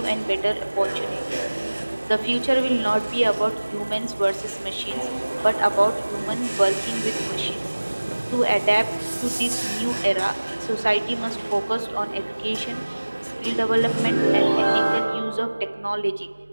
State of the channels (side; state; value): both; inverted; correlation -1.00